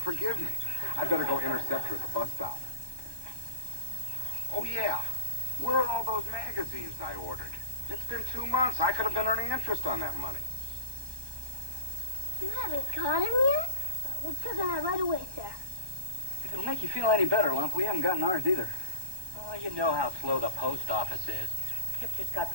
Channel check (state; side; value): late; left; 1.2 ms